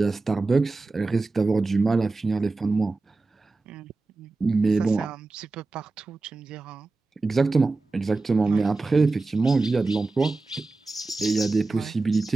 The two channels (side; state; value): left; quieter; 3.6 dB